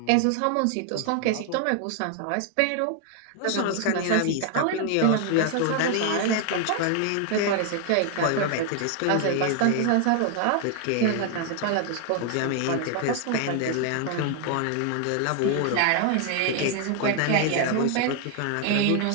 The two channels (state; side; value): different; both; correlation 0.00